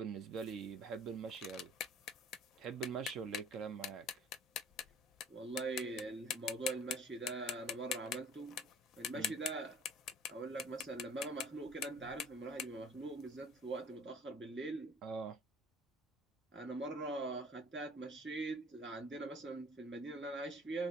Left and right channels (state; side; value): normal; both; correlation 0.50